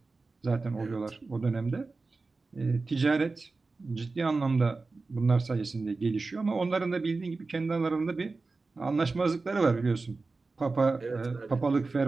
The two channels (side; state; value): left; quieter; 3.8 dB